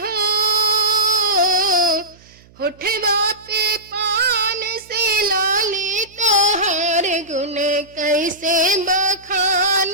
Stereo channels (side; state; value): right; noise; hum, 27 dB below the sound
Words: होठवा पे पान से लाली तोहार गुण कैसे